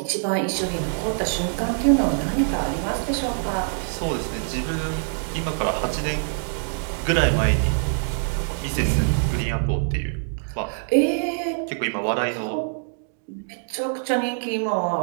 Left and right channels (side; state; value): left; silent; digital silence